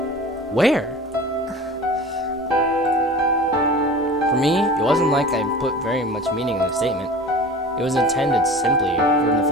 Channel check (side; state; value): both; normal; correlation 0.38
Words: where? For me, it wasn't like I put very much meaning in the statement. It was intended simply from the